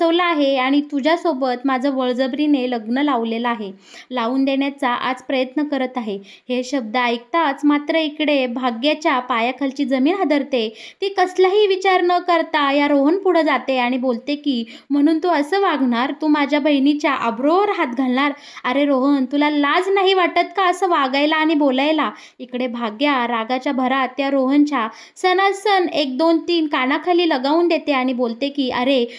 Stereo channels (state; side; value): identical; both; correlation 1.00